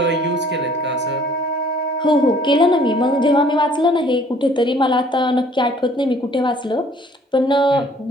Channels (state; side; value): normal; both; correlation 0.57